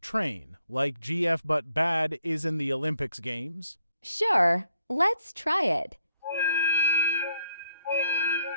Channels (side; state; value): both; inverted; correlation -0.72